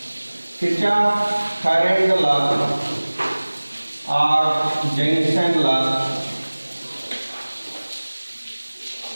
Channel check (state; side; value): inverted; both; correlation -1.00